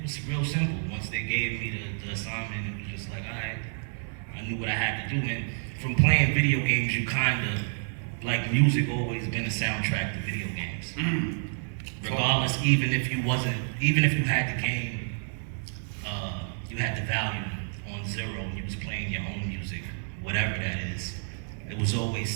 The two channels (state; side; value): silent; left; 59 dB below the other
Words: was real simple. Once they gave me the assignment, it was just like, alright, I knew what I had to do, and from playing video games, you kinda, like music always been a soundtrack to video games. Regardless, even if you had the game, you had the value on zero and you was playing your own music, whatever that is, it was always